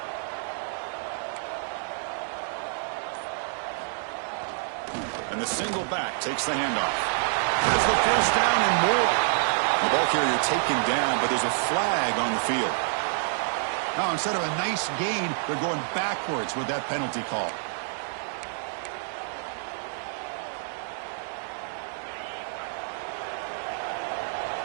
And the single back takes the handoff. There's the first down and more. The ball carrier taken down, but there's a flag on the field. Now, instead of a nice gain, they're going backwards with that penalty call.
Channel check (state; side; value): silent; left; digital silence